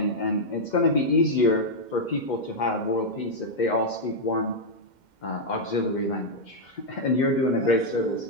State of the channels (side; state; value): right; late; 2.1 ms